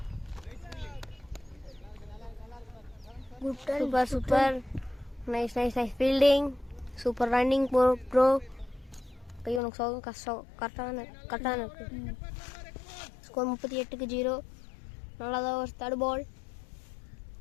Super super. Nice nice nice fielding. Super running bro. கை உனக்கு சோகம் கஷ்டம். கரெக்டான இருக்கு. ஸ்கோர் 38க்கு 0. நல்லாதான் ஒரு தேர்ட் பால்.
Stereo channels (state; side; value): drops out; right; at 9.6 s